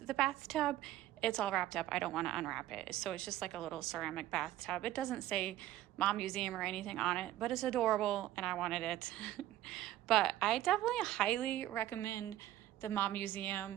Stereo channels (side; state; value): left; quieter; 14.0 dB